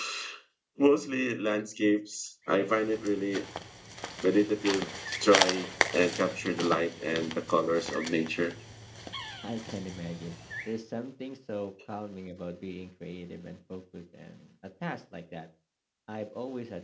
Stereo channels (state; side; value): identical; both; correlation 1.00